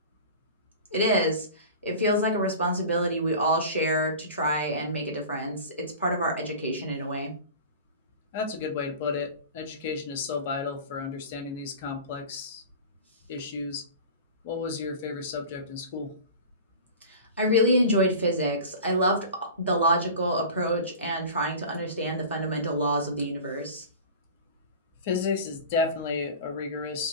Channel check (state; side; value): inverted; both; correlation -0.36